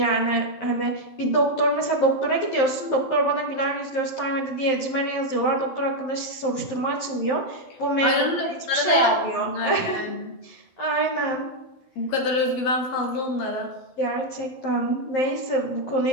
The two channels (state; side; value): late; right; 11 ms